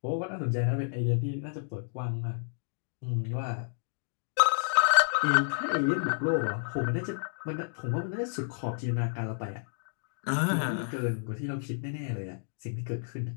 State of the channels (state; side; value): silent; right; digital silence